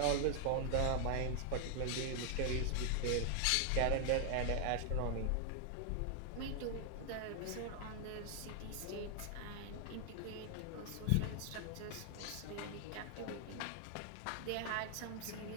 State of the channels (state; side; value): different; both; correlation 0.00